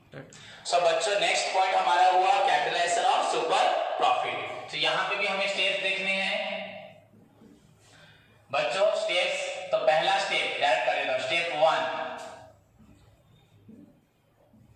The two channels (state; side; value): identical; both; correlation 1.00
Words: So बच्चों next point हमारा हुआ capitalisation of super profit. तो यहां पे भी हमें स्टेप्स देखने हैं बच्चों, स्टेप्स। तो पहला स्टेप डायरेक्ट कर देता हूं, स्टेप 1